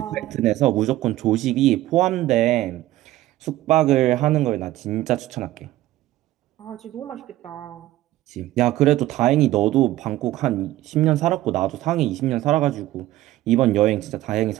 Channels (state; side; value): quieter; left; 15.5 dB